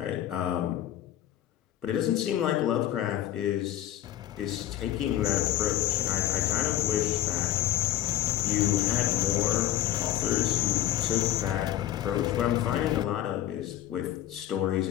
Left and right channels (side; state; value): right; quieter; 13.0 dB